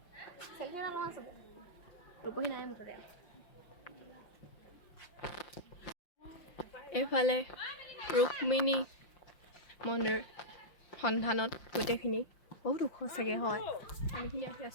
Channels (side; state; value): right; late; 5.7 ms